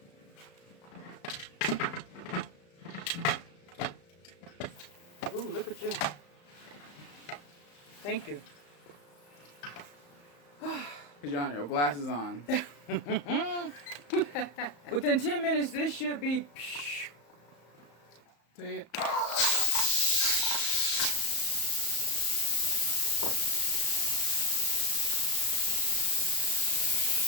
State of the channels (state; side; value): late; right; 35 ms